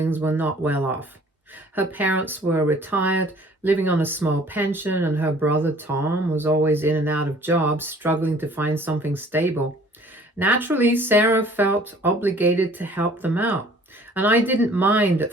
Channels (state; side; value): normal; both; correlation 0.53